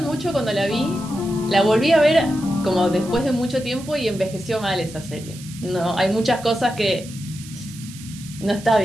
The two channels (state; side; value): noise; right; hiss, 17 dB below the sound